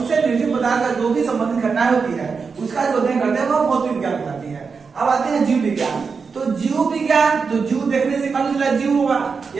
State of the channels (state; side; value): quieter; left; 5.2 dB